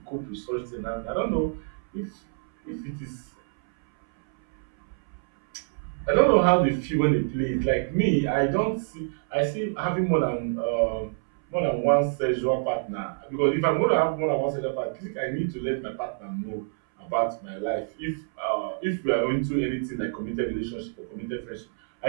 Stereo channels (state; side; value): silent; left; 60 dB below the other